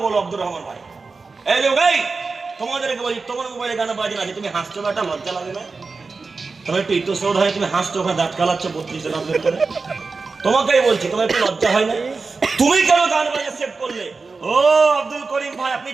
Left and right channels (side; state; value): left; quieter; 4.2 dB